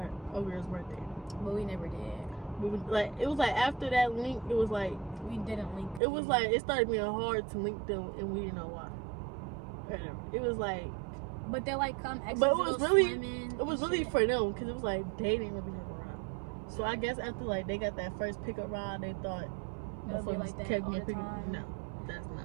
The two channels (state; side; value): drops out; left; at 6.0 s